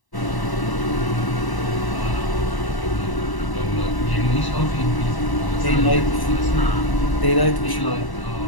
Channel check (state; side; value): late; right; 1.1 ms